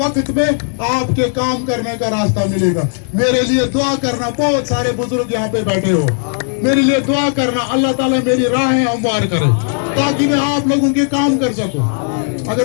में आपके काम करने का रास्ता मिलेगा। मेरे लिए दुआ करना, बहुत सारे बुजुर्ग यहाँ पे बैठे हो, मेरे लिए दुआ करना, अल्लाह ताला मेरी राहें हमवार करे ताकि मैं आप लोगों के काम कर सकूं।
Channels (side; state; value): right; silent; 69 dB below the other